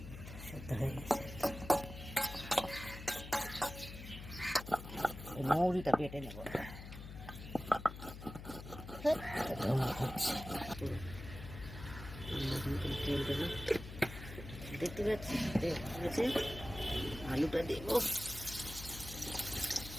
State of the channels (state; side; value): noise; left; hum, 11 dB below the sound